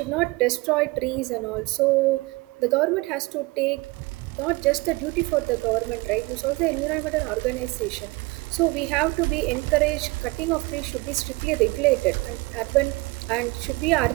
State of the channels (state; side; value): quieter; left; 24.0 dB